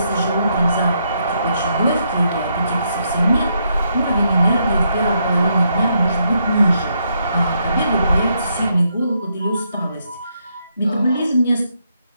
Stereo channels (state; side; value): inverted; both; correlation -0.77